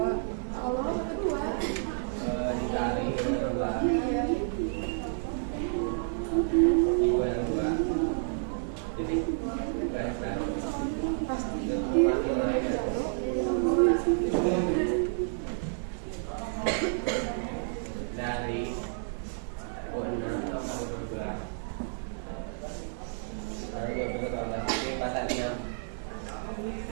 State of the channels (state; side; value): silent; left; digital silence